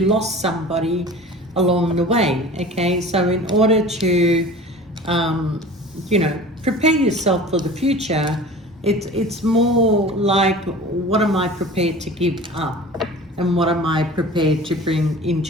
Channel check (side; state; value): both; normal; correlation 0.39